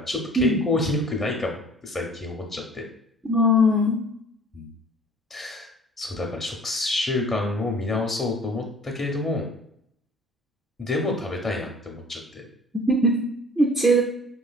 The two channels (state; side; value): normal; both; correlation 0.50